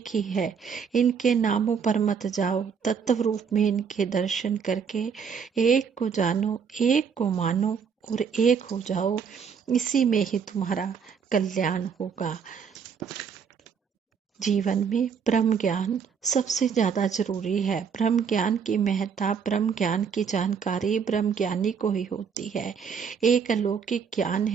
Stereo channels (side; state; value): left; quieter; 6.6 dB